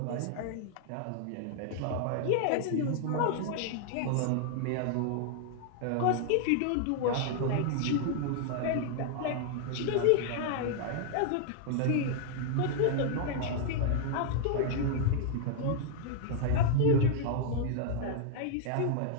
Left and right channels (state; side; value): different; both; correlation 0.00